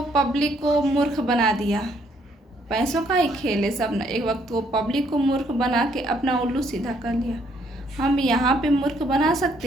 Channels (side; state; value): both; normal; correlation 0.68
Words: पब्लिक को मूर्ख बना दिया, पैसों का ही खेल है सब ना। एक वक्त को पब्लिक को मूर्ख बना के अपना उल्लू सीधा कर लिया। हम यहाँ पे मूर्ख बना